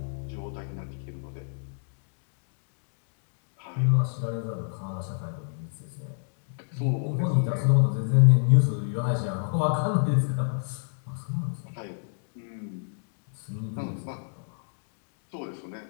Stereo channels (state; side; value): silent; right; digital silence